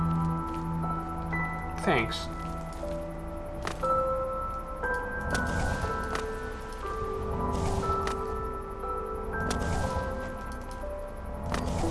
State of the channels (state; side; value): identical; both; correlation 1.00